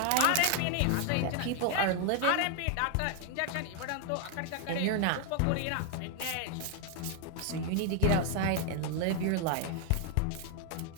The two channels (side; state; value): both; different; correlation 0.00